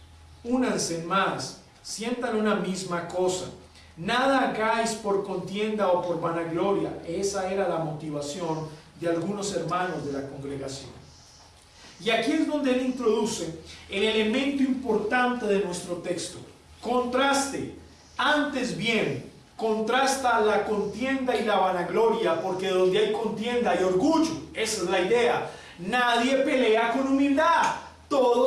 únanse más, sientan una misma cosa, nada hagáis por contienda o por vanagloria. Esa era la motivación de algunos hermanos de la congregación. Y aquí es donde Él introduce el elemento importante de nuestro texto. Contraste, antes bien, contrasta la contienda y la vanagloria, porque donde hay contienda hay orgullo. Esa es la idea. Nadie pelea con humildad.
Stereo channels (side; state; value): both; identical; correlation 1.00